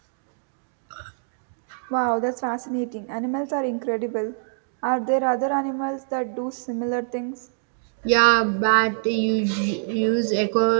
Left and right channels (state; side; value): silent; left; digital silence